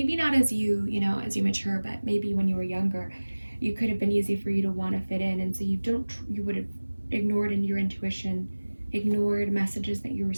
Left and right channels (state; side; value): inverted; both; correlation -1.00